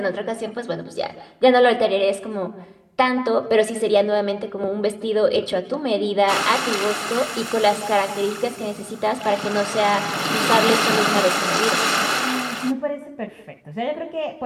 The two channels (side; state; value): both; identical; correlation 1.00